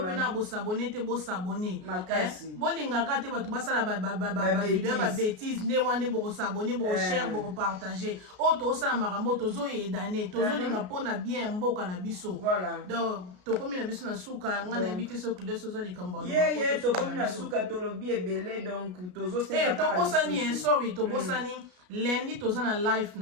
bosabone te bosabone bolingaka te bato basala bavideo ya babétise nde wana nde bokosabone bokoshare bokopartage oyo tozosala makambo tozoyedane tozolinga mpona bien mboka na biso donc tokomi na biso na suka nga nayebi te soki nde sozo likambo ye tokomi na suka tolobi ebele donc tobosani sorry tobosani lundi toza na live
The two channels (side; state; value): left; late; 33 ms